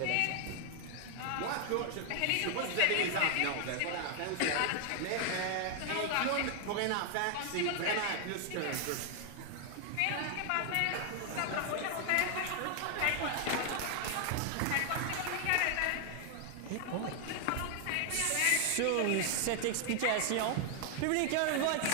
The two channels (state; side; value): different; both; correlation 0.00